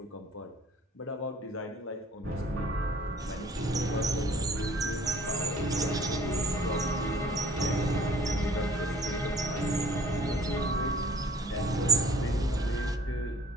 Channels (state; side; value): normal; both; correlation 0.53